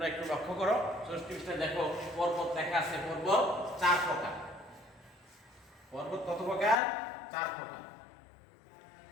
একটু লক্ষ্য করো। 64 পৃষ্ঠা দেখো, পর্বত লেখা আছে। পর্বত 4 প্রকার। পর্বত কত প্রকার? 4 প্রকার।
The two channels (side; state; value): right; drops out; at 6.8 s